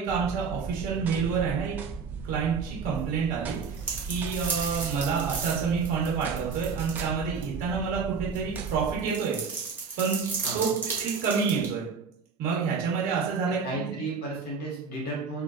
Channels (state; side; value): quieter; left; 5.4 dB